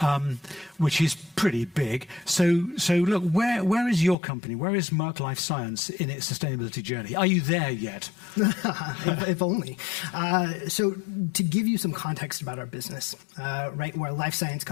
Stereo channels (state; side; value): drops out; right; at 4.2 s